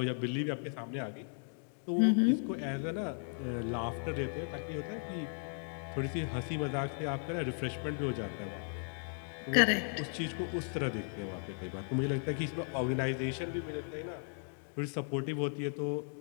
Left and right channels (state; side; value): silent; right; 54 dB below the other